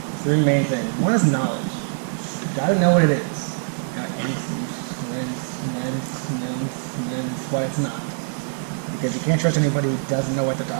three main things. One is knowledge. You got to know what it is. And what it's not. because you can't trust anybody who doesn't know what they're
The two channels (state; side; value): silent; left; 63 dB below the other